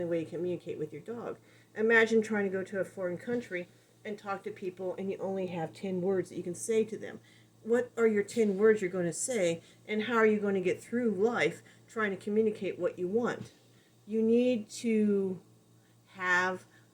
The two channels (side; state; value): both; identical; correlation 1.00